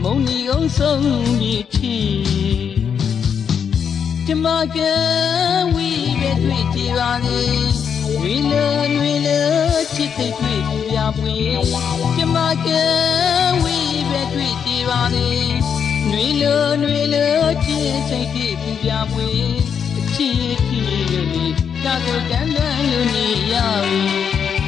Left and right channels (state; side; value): quieter; right; 7.3 dB